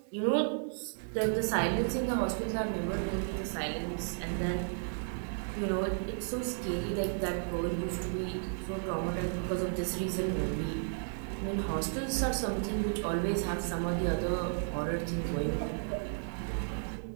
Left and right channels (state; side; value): silent; left; digital silence